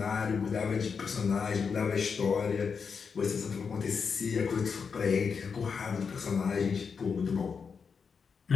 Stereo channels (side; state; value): right; quieter; 5.8 dB